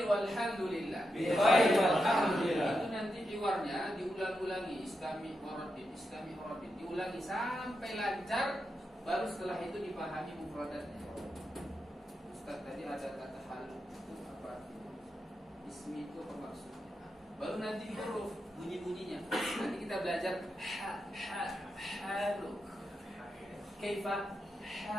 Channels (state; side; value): normal; both; correlation 0.87